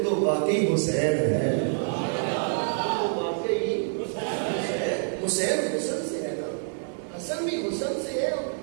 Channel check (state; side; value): silent; left; digital silence